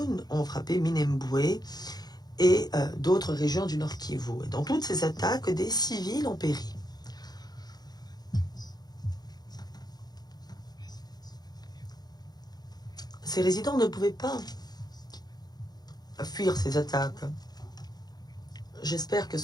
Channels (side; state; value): right; late; 0.19 ms